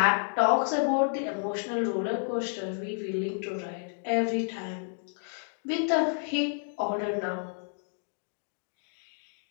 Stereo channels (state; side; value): silent; right; 58 dB below the other